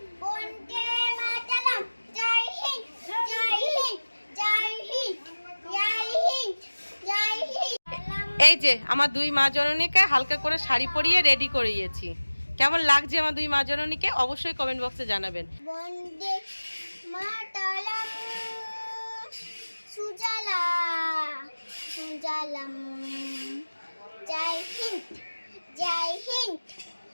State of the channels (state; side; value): inverted; both; correlation -1.00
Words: এই যে আমার দুই মা জননীকে হালকা করে শাড়ি পরিয়ে রেডি করিয়েছি, কেমন লাগছে আমার দুই মা জননীকে অবশ্যই কমেন্ট বক্সে জানাবেন। বন্দে মাতরম সুজলা সুজলাম জয় হিন্দ জয় হিন্দ